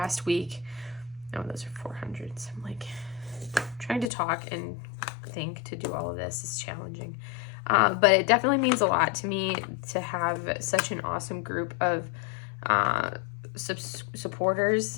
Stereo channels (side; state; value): right; drops out; at 4.1 s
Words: week. Oh, those are 400s. I'm trying to talk and think to do all of this is challenging. But it definitely means a lot to me to have such an awesome group of supporters